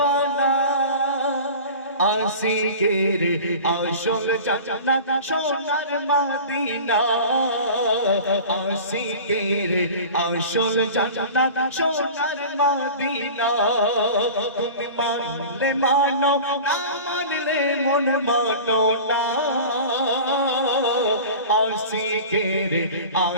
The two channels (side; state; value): both; inverted; correlation -0.37